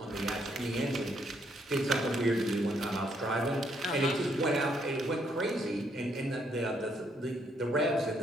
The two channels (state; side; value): normal; both; correlation 0.72